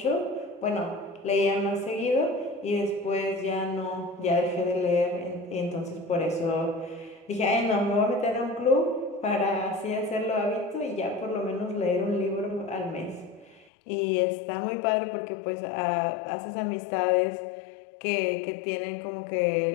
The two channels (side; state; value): right; drops out; at 13.7 s